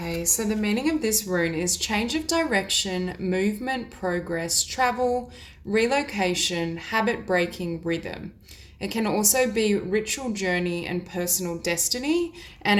so the meaning of this rune is change of direction, movement, progress, travel, relocation, habit breaking, rhythm. It can also be ritual journey and personal destiny,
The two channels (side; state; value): both; identical; correlation 1.00